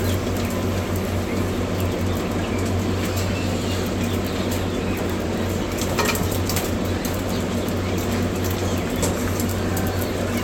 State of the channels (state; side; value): identical; both; correlation 1.00